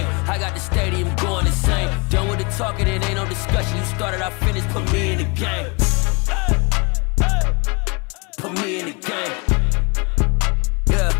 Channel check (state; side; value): quieter; right; 30.0 dB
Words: I got the stadium going insane. Done with the talking, it ain't no discussion. You started, I finished, put me in the game. Put me in the game. Yeah,